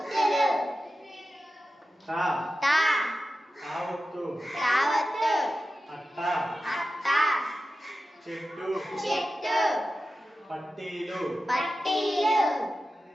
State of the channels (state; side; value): normal; both; correlation 0.93